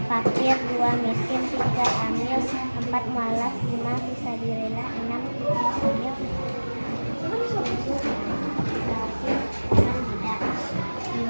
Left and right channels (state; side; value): inverted; both; correlation -1.00